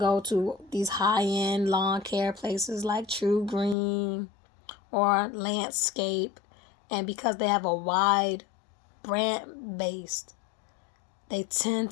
to these high-end lawn care places like True Green or Landscape, and because they have a wide brand base, they tend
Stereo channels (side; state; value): right; drops out; at 3.8 s